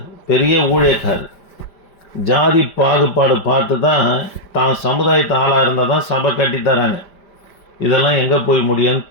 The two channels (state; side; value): late; right; 5.1 ms